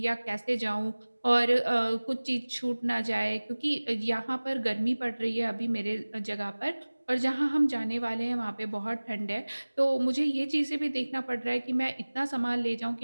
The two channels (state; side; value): inverted; both; correlation -1.00